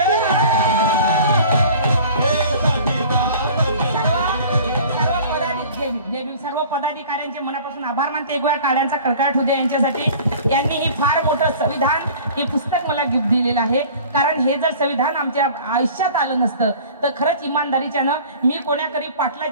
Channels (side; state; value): both; inverted; correlation -0.45